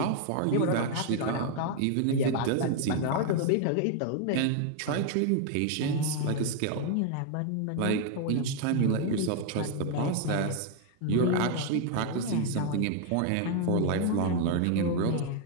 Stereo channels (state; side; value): different; both; correlation 0.00